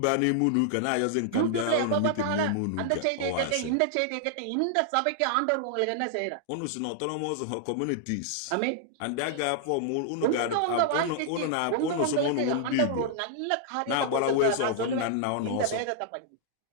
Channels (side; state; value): both; different; correlation -0.01